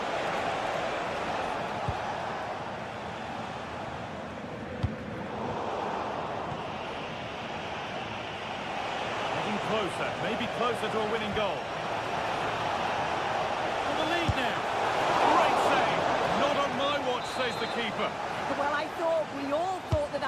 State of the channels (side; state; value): both; identical; correlation 1.00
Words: Getting closer, maybe closer to a winning goal. For the lead now. Great save. Not on my watch, says the keeper. Well, we all thought